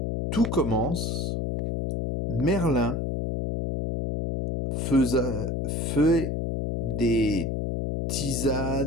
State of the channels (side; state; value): left; noise; hum, 1 dB below the sound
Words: Tout commence, Merlin fait des